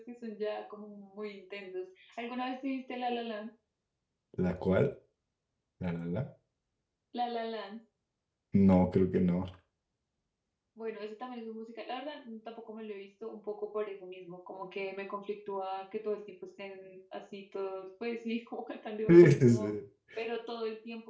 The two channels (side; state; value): both; identical; correlation 1.00